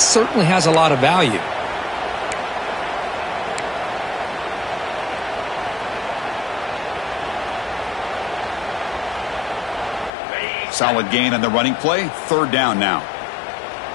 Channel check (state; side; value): drops out; right; at 10.1 s